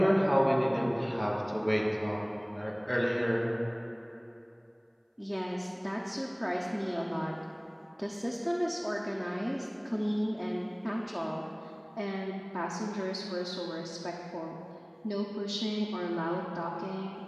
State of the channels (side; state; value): both; identical; correlation 1.00